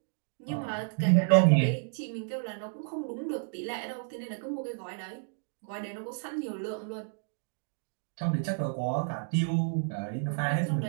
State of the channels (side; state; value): left; silent; digital silence